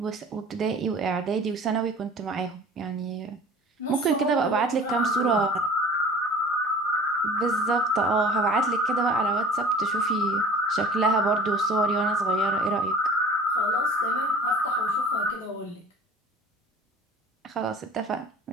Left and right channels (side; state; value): both; normal; correlation 0.44